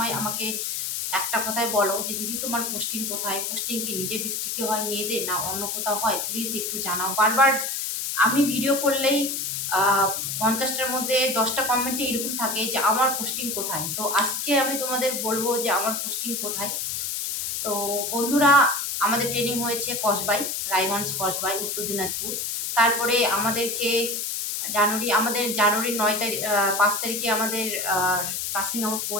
আমাকে একটা কথাই বলো যে দিদি তোমার পোস্টিং কোথায়? পোস্টিং কি নিজের ডিস্ট্রিক্টে হয় মেয়েদের, না অন্য কোথাও হয়? প্লিজ একটু জানাও। বারবার আমি ভিডিও করলেই 50টার মধ্যে 10টা কমেন্টে এরকম থাকে যে আমার পোস্টিং কোথায়। তো আজকে আমি তোমাদের বলবো যে আমার পোস্টিং কোথায়। তো বন্ধুরা, আমাদের ট্রেনিং হয়েছে কসবাই, রায়গঞ্জ কসবাই, উত্তর দিনাজপুর। তারপরে আমাদের জানুয়ারির 9 তারিখ 5 তারিখে আমাদের পাসিং আউট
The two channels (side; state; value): left; noise; hiss, 2 dB below the sound